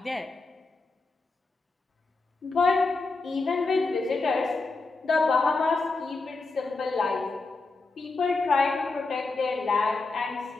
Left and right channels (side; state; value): right; quieter; 3.7 dB